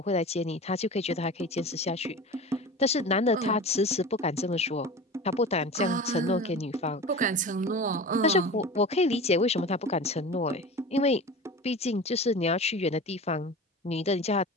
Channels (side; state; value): both; normal; correlation 0.33